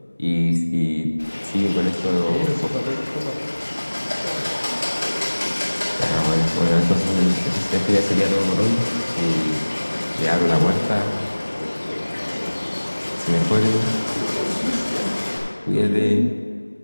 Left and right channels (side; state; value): both; inverted; correlation -1.00